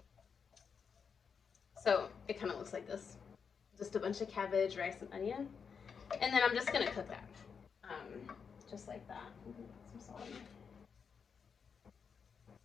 So it kind of looks like this. Just a bunch of cabbage, rice, and onion. And then I'm just going to cook that. Just like that. I'm going to put some salt in there.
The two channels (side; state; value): right; quieter; 6.2 dB